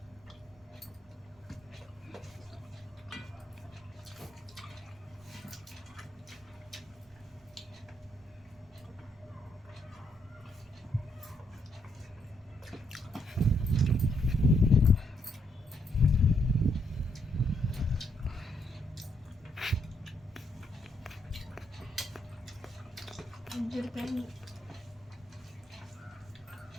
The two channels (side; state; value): both; normal; correlation 0.75